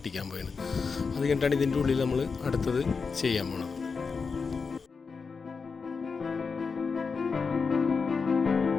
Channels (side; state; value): right; quieter; 5.0 dB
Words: പോയാണ്. അത് കഴിഞ്ഞിട്ടാണ് ഇതിൻ്റെ ഉള്ളിൽ നമ്മൾ അടുത്തത് ചെയ്യാൻ പോകണം.